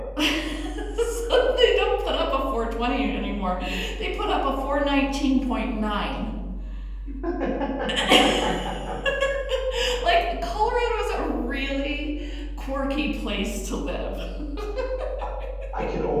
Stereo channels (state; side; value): identical; both; correlation 1.00